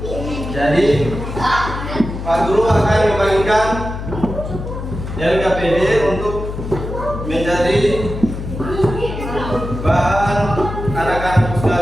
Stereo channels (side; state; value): left; noise; hum, 7 dB below the sound